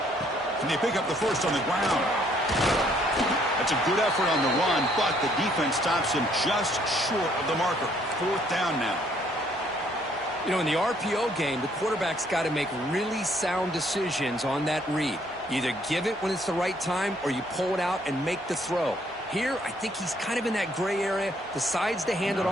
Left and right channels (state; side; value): normal; both; correlation 0.66